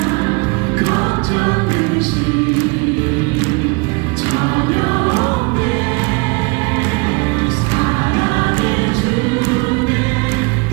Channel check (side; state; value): left; quieter; 29.3 dB